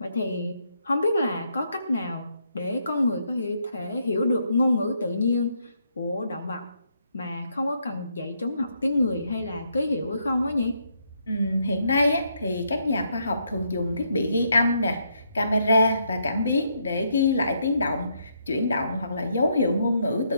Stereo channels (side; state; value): both; inverted; correlation -0.75